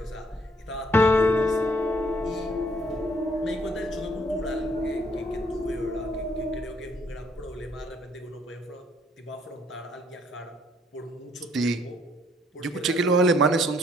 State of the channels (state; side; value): normal; both; correlation 0.65